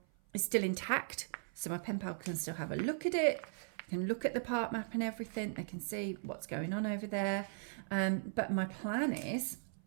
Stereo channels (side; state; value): left; silent; 52 dB below the other